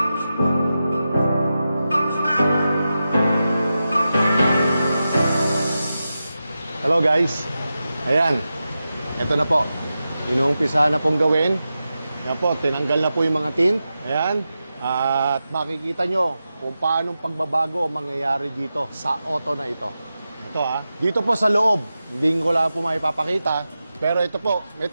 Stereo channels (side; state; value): both; inverted; correlation -0.91